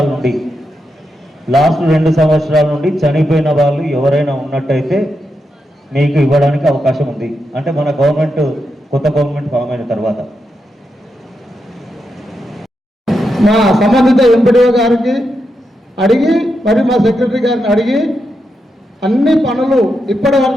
సంవత్సరాల నుండి చనిపోయిన వాళ్ళు ఎవరైనా ఉన్నట్టయితే మీకు ఇవ్వడానికి అవకాశం ఉంది. అంటే మన కొత్త గవర్నమెంట్ ఫామ్ అయిన తర్వాత మా సంబంధిత ఎంపీడీఓ గారికి అడిగి మరి మా సెక్రటరీ గారిని అడిగి అన్ని పనులు ఇప్పటి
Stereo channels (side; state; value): both; normal; correlation 0.85